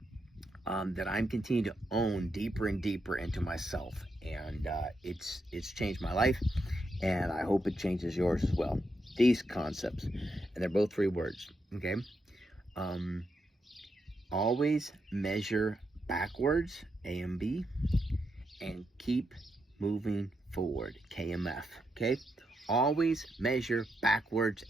that I'm continuing to own deeper and deeper into myself. And it's changed my life, and I hope it changes yours as well. These concepts, and they're both 3 words, okay? Always measure backwards, AMB, and keep moving forward, KMF, okay? Always measure backwards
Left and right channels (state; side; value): normal; both; correlation 0.83